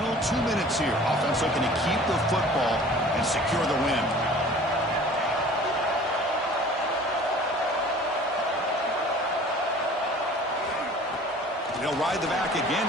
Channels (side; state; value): both; normal; correlation 0.47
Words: 2 minutes here. Offense looking to keep the football and secure the win. They'll ride the back again